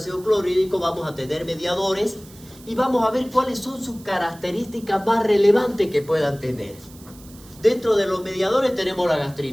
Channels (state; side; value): noise; right; hiss, 22 dB below the sound